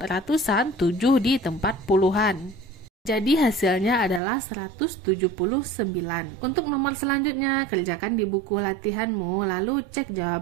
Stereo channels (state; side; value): drops out; left; at 4.2 s